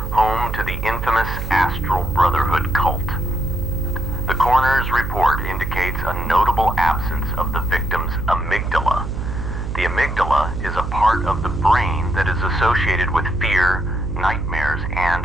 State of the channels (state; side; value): noise; right; hum, 5 dB below the sound